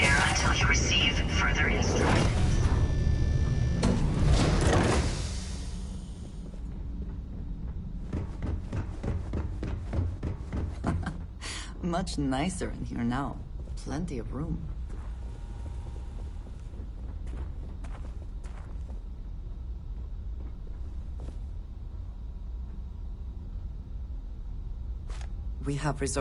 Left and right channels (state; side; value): identical; both; correlation 1.00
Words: until you receive further instructions. Much nicer in here now. Plenty of room. We have